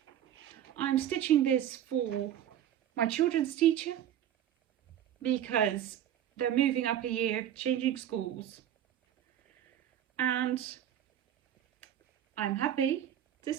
I'm stitching this for my children's teacher because they're moving up a year, changing schools. And I'm happy to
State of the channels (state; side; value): quieter; left; 10.8 dB